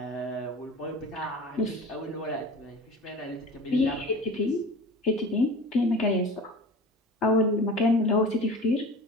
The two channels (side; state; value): both; normal; correlation 0.36